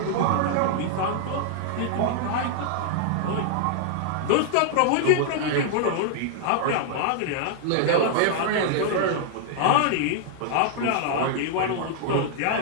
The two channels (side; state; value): both; different; correlation -0.01